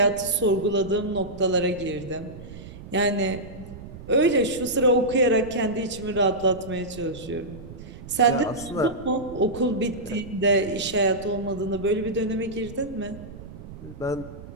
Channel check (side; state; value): right; noise; rumble, 15 dB below the sound